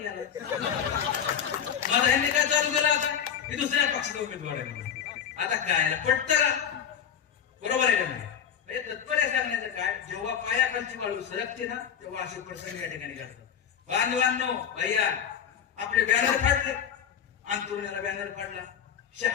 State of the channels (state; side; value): quieter; right; 8.4 dB